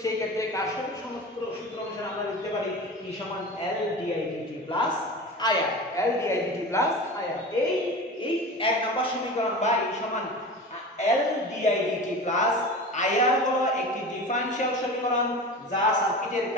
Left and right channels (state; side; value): normal; both; correlation 0.32